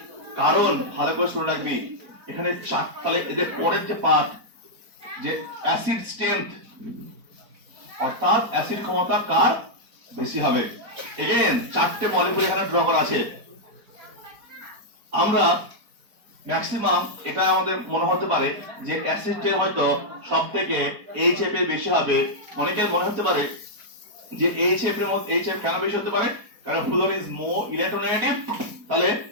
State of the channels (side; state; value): left; late; 4.5 ms